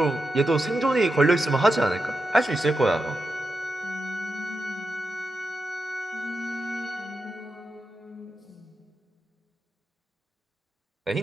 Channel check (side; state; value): both; normal; correlation 0.88